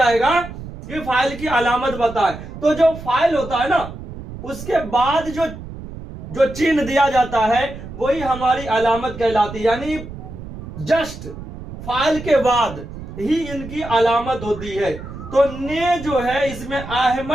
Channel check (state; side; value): noise; right; rumble, 12 dB below the sound